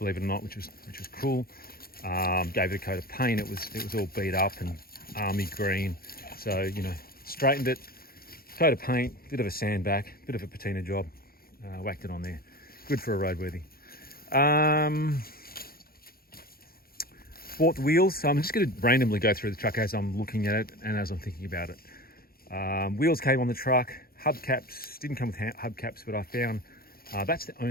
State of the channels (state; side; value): late; right; 0.44 ms